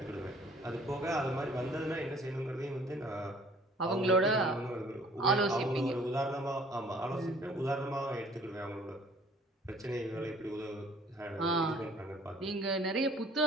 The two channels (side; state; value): both; normal; correlation 0.55